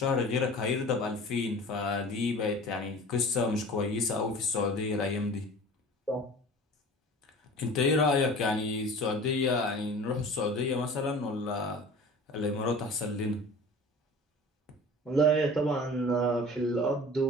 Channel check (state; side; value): normal; both; correlation 0.41